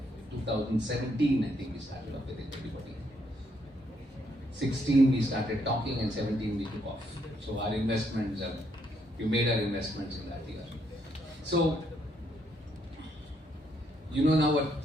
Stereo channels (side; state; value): both; normal; correlation 0.73